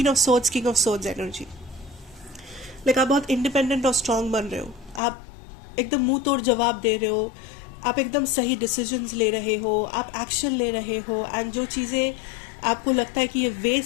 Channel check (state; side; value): drops out; right; at 5.0 s